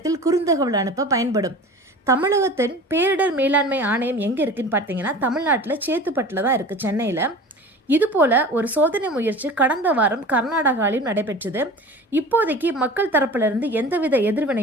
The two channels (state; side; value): normal; both; correlation 0.38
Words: குறுந்தகவல் அனுப்ப பயன்படும். தமிழகத்தின் பேரிடர் மேலாண்மை ஆணையம் எங்கே இருக்குன்னு பார்த்தீங்கன்னா, தமிழ்நாட்டில் சேத்துப்பட்டில் தான் இருக்குது, சென்னையில். இது போல ஒரு சோதனை முயற்சி கடந்த வாரம் கர்நாடகாவிலும் நடைபெற்றது. இப்போதைக்கு மக்கள் தரப்பிலிருந்து எந்தவித